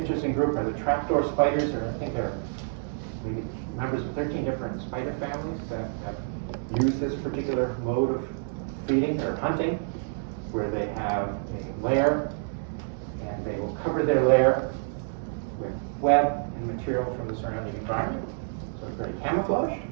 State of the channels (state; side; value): silent; left; 59 dB below the other